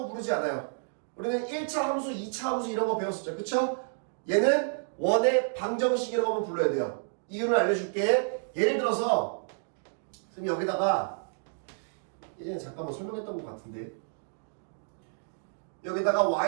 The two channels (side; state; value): left; silent; digital silence